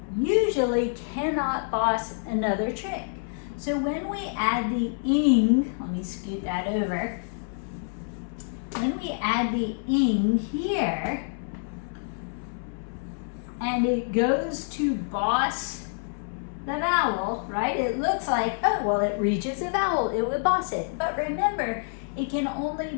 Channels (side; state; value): right; silent; 60 dB below the other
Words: usually cannot boss another trick. So when we add the ing, let me scoot that over. When we add the ing here, and it goes to boss the vowel, right? It looks like, oh, well, it reaches a vowel, it would boss it. But remember, it can only